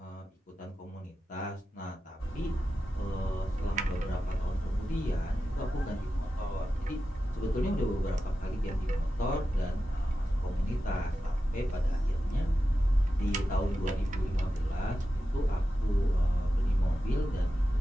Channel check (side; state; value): both; normal; correlation 0.92